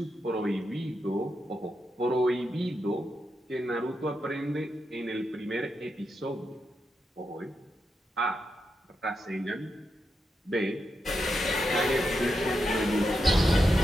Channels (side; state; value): both; normal; correlation 0.86